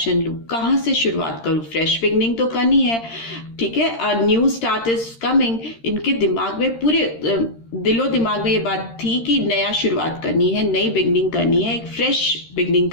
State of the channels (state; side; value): late; right; 13 ms